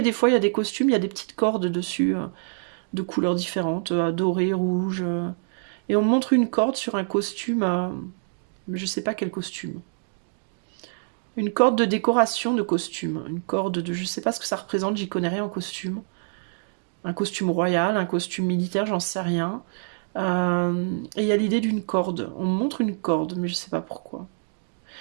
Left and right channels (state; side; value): silent; left; digital silence